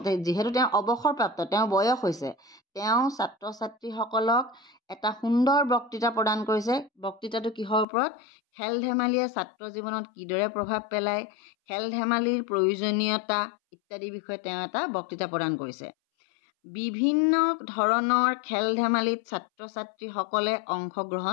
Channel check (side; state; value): right; drops out; at 7.9 s